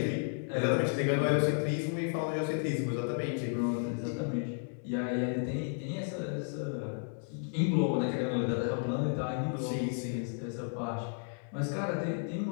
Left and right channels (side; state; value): right; silent; 56 dB below the other